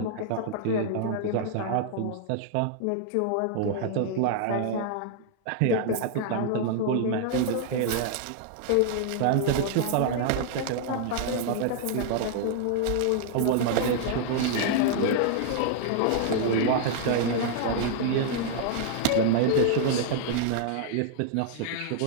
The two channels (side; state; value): both; different; correlation -0.01